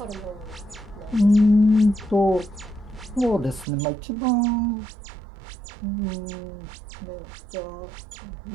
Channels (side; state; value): left; drops out; at 3.7 s